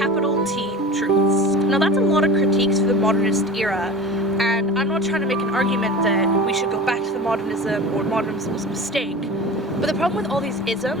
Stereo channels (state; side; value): normal; both; correlation 0.35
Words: T truths. Now that's a lot of critiques for the modernist era, and I'm not trying to make an argument that we should go back to the modernism or modernism was a mistake. But the problem with all these